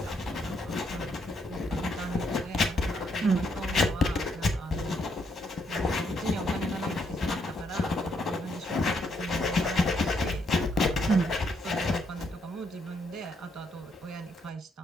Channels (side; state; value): both; normal; correlation 0.74